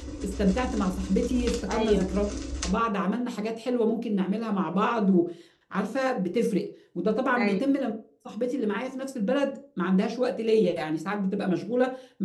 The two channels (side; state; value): both; identical; correlation 1.00